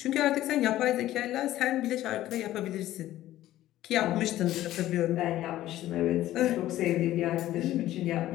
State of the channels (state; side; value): quieter; right; 14.3 dB